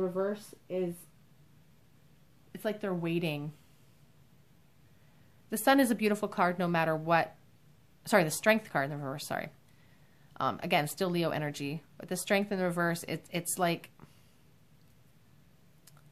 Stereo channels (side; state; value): both; identical; correlation 1.00